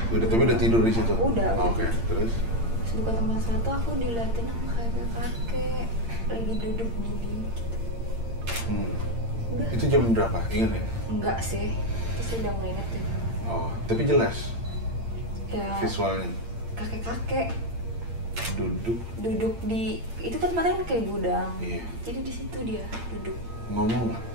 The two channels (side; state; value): left; late; 8.7 ms